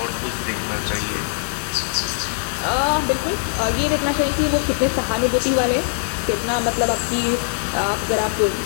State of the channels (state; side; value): silent; right; digital silence